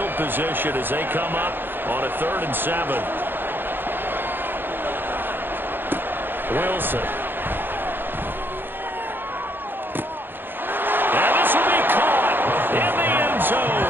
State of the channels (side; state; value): left; late; 0.098 ms